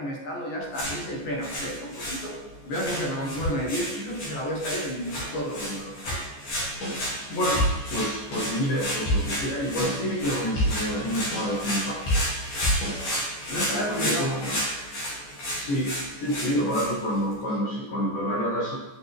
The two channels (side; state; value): right; late; 14 ms